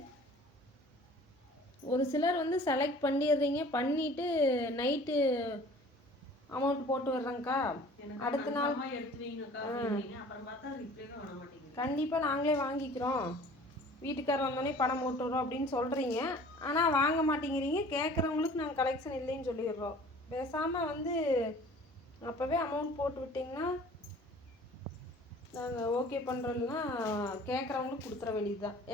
ஒரு சிலர் வந்து செலக்ட் பண்ணிடுறீங்க, பண்ணிவிட்டு நைட்டு அமௌண்ட் போட்டு வர்றேங்க்கா, அடுத்த நாள் கண்டிப்பாக நாங்களே வாங்கிக்கிறோம், வீட்டுக்காரர் வந்தோடனே பணம் போட்டு வரோம் அப்படின்னு சொல்கிறீங்க. ஆனால் வாங்க மாட்டேங்கிறீங்க. கேட்குறவங்களுக்கு நாங்கள் கலெக்ஷன் இல்லைன்னு சொல்லிடுறோம். பேசாமல் வந்து அப்போவே அமௌண்ட் போட்டு விட்டிங்கன்னா நாங்கள் ஓகே பண்ணுறோம்னா கேட்குறவங்களுக்கு கொடுத்துற வேண்டியது தான்.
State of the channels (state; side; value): normal; both; correlation 0.48